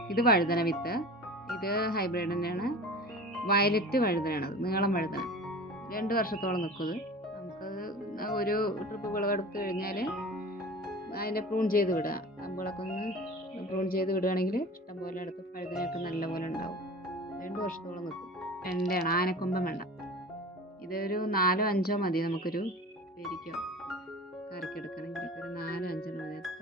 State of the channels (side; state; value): both; normal; correlation 0.37